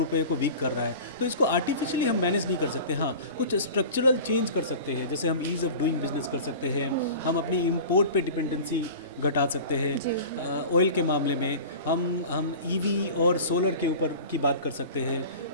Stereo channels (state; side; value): inverted; both; correlation -0.37